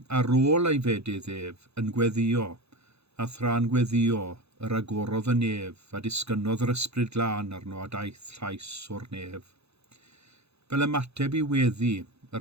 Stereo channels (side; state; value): left; late; 0.79 ms